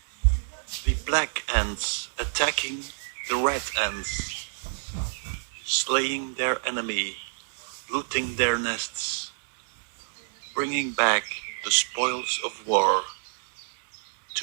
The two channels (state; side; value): silent; left; digital silence